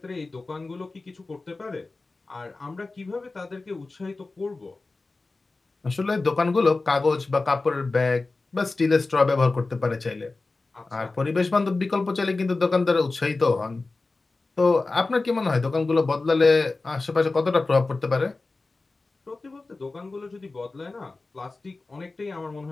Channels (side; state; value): right; quieter; 3.5 dB